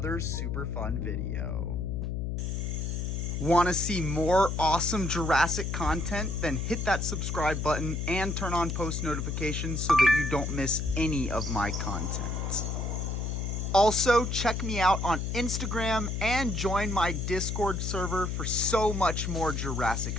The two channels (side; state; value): left; noise; hum, 2 dB below the sound